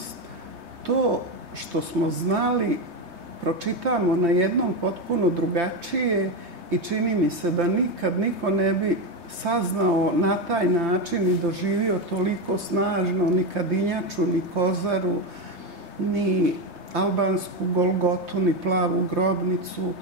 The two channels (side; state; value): left; late; 3.2 ms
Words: to što smo znali pročitamo na jednom potpuno drugačije i čini mi se da nikad niko ne bi saznao na taj način i doživio toliko snažno ni Kadinjaču, ni Kozaru, ni albansku Golgotu, ni plavu grobnicu,